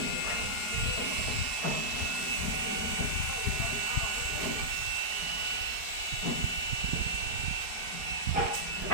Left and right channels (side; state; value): right; late; 4.7 ms